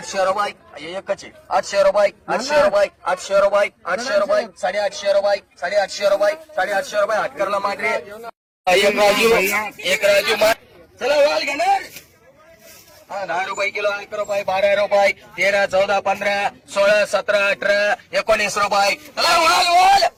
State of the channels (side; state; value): both; identical; correlation 1.00